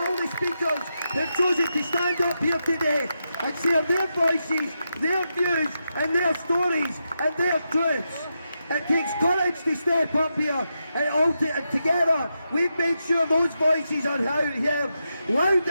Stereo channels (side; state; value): both; inverted; correlation -0.86